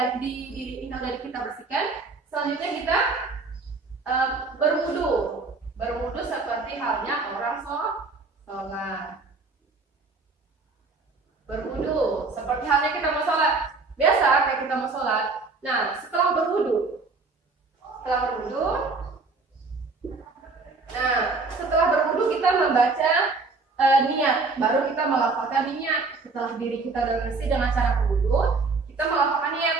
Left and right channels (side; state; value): left; quieter; 3.9 dB